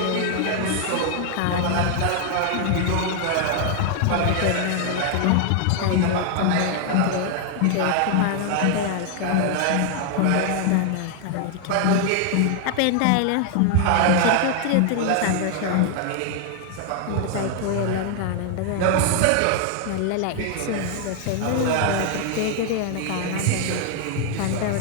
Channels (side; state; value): both; different; correlation 0.00